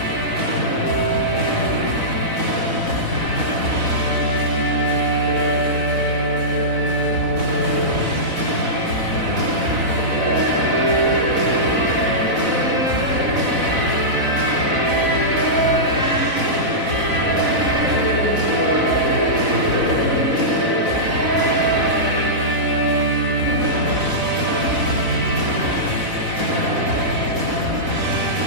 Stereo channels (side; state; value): left; late; 4.0 ms